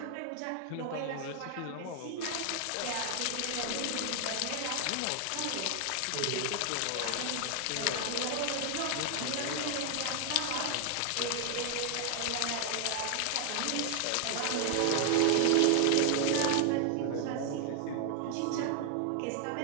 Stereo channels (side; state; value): both; different; correlation 0.00